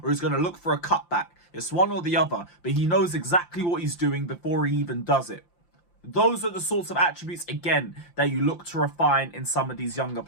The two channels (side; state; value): right; late; 5.8 ms